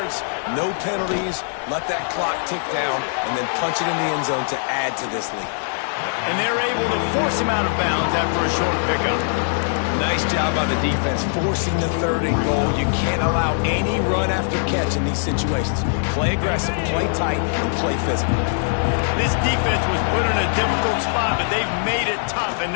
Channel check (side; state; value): right; silent; digital silence